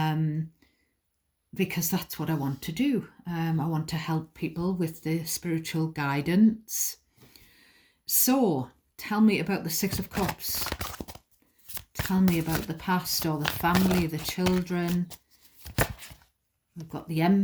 because that's what I want to do. I want to help people with the spiritual guidance. So tell me about the Six of Cups. Tell me about the past or the family, the children. We've got the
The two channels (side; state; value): both; identical; correlation 1.00